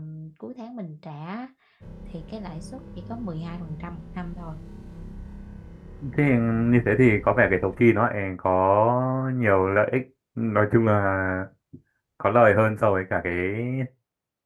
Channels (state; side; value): identical; both; correlation 1.00